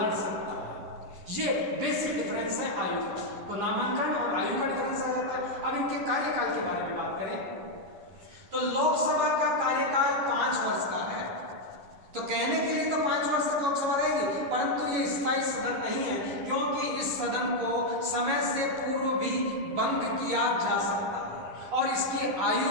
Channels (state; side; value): late; left; 11 ms